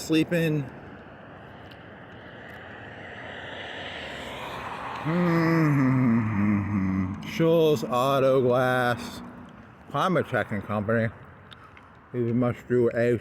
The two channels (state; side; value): identical; both; correlation 1.00